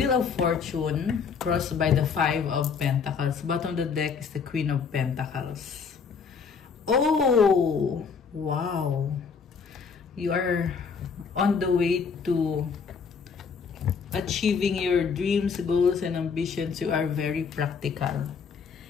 of Fortune crossed by the Five of Pentacles. Bottom of the deck is the Queen of Pentacles. Oh, wow. You are on the way to achieving your dreams, goals, and ambitions. You are very practical.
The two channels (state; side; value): quieter; right; 5.8 dB